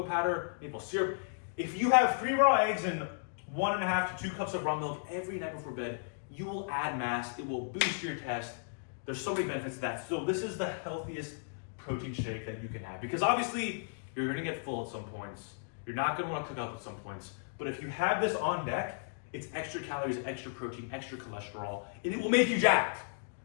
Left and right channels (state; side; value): silent; right; digital silence